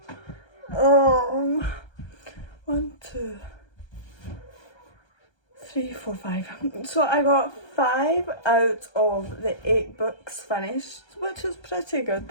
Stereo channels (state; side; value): late; right; 1.3 ms